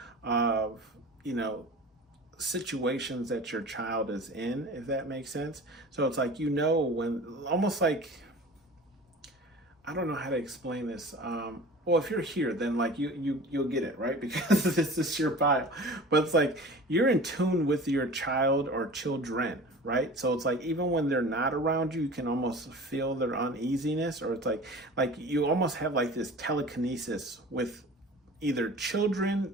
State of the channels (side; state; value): both; normal; correlation 0.39